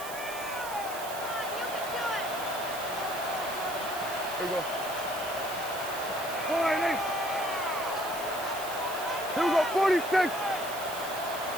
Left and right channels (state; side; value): noise; right; hiss, 11 dB below the sound